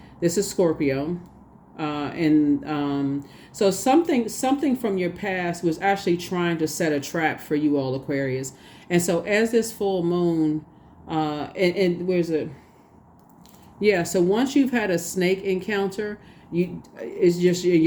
This is Scorpio. So something from your past was actually trying to set a trap for you all, Aquarius. And so as this full moon, and where's it? Yeah, so once you've had a snake encounter, it's just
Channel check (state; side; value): identical; both; correlation 1.00